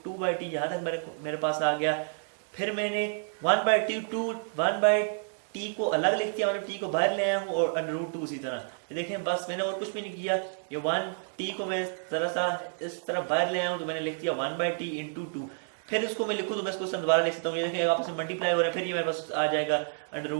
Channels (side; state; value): left; silent; digital silence